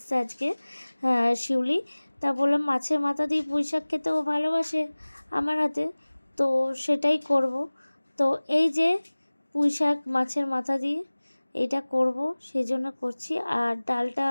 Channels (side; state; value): both; inverted; correlation -1.00